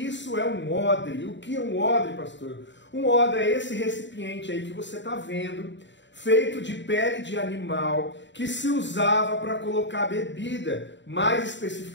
é um odre. O que é um odre, pastor? Um odre é esse recipiente aí que você está vendo, feito de pele de animal, que se usava para colocar bebida, mais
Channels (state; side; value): late; right; 0.53 ms